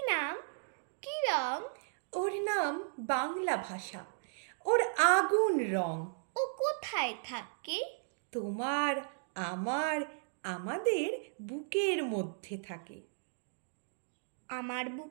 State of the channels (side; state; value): left; silent; digital silence